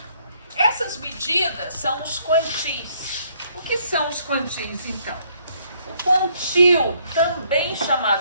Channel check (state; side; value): inverted; both; correlation -0.67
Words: Essas medidas são os quantis. O que são os quantis, então? O quantil, também